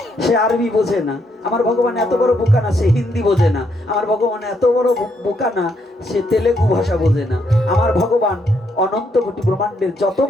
সে আরবি বোঝে না। আমার ভগবান এত বড় বোকা না সে হিন্দি বোঝে না। আমার ভগবান এত বড় বোকা না সে তেলেগু ভাষা বোঝে না। আমার ভগবান অনন্ত কোটি ব্রহ্মাণ্ডের যত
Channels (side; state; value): both; normal; correlation 0.75